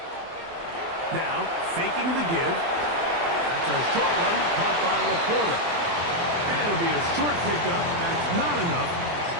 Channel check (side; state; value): left; late; 24 ms